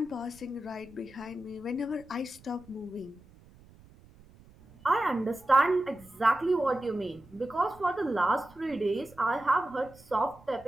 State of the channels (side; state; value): right; noise; rumble, 24 dB below the sound